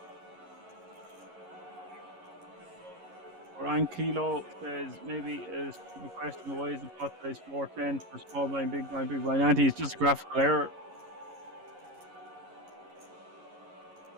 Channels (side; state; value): left; late; 11 ms